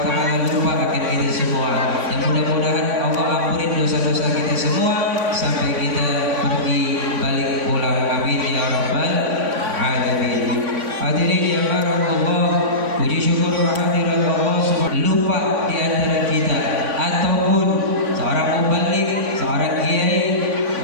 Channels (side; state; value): left; late; 3.5 ms